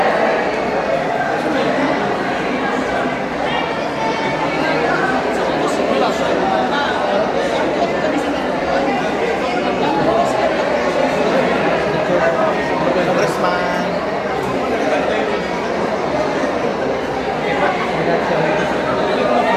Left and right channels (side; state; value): right; noise; hum, 28 dB below the sound